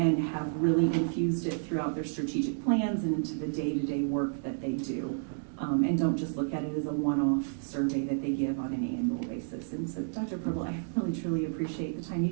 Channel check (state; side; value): silent; left; digital silence